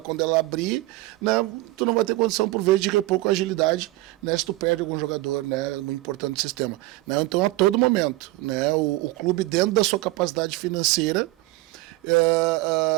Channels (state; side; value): quieter; left; 19.5 dB